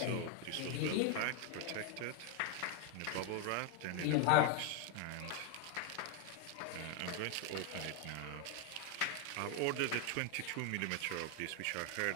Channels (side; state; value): both; different; correlation 0.01